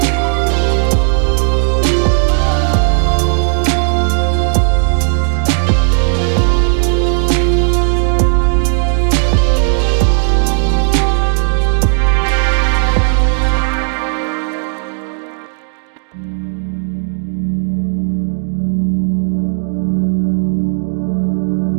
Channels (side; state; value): left; silent; 70 dB below the other